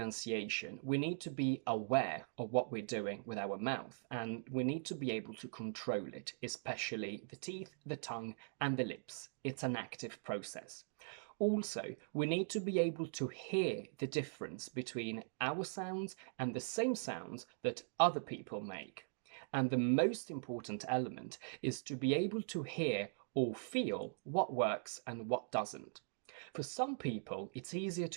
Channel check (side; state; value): left; silent; digital silence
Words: we need to be aware of what we're doing with our mouth, and we need to be able to control it, especially the teeth, the tongue, and the lips. It's an active process. Also, we need to be able to hear the difference between our sounds and the same sounds that other people make. And the most important element is to be able to hear or feel what works and what doesn't. For some people, it's easier